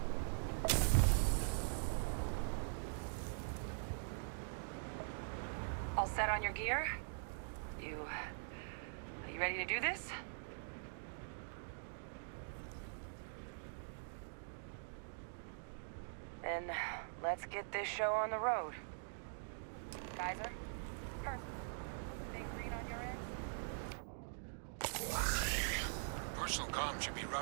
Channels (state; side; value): silent; left; digital silence